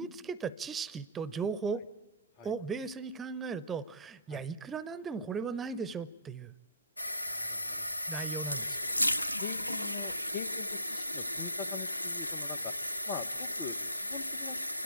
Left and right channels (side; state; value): both; inverted; correlation -0.42